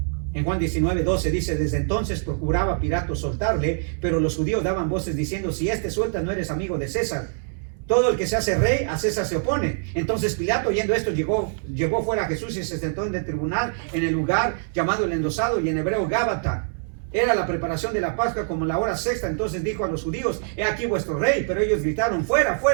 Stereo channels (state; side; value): silent; left; 62 dB below the other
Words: En Juan 19:12 dice: desde entonces procuraba Pilato soltarle, pero los judíos daban voces diciendo: si este suelta, no eres amigo de César. Todo el que se hace rey, a César se opone. Entonces Pilato, oyendo esto, llevó fuera a Jesús y se sentó en el tribunal, en el lugar llamado el Endosado, y en hebreo Gábata. Era la preparación de la Pascua, como la hora sexta. Entonces dijo a los judíos: he aquí vuestro rey. Pero ellos gritaron: fuera,